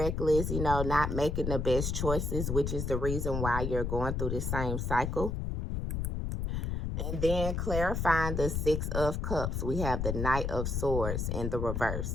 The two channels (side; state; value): left; noise; rumble, 1 dB below the sound